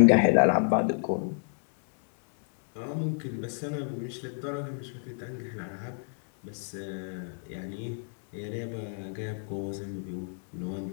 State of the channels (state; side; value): silent; right; digital silence